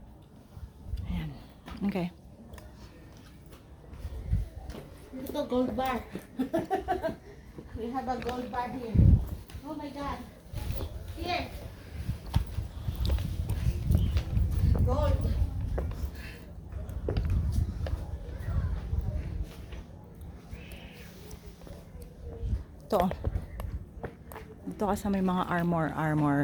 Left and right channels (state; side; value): identical; both; correlation 1.00